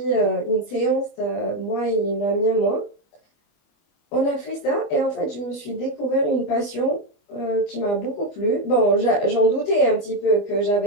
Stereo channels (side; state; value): right; late; 25 ms